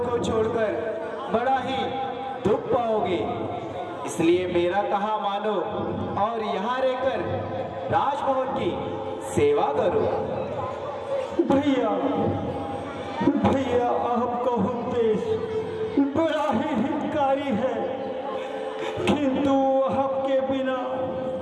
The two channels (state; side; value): identical; both; correlation 1.00